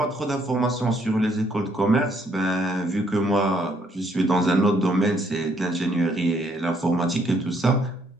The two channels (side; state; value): both; normal; correlation 0.69